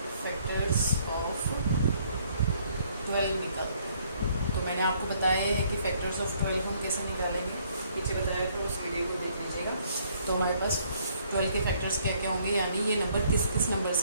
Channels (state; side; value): inverted; both; correlation -0.65